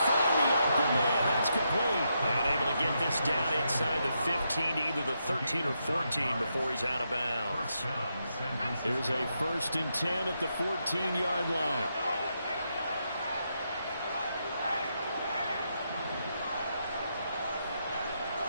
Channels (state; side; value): inverted; both; correlation -0.82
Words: find the open man. That's complete. And able to get this down inside the 15, either the 13 or 14 before he's out of bounds. Here's a 1st and 10 at the 14-yard line.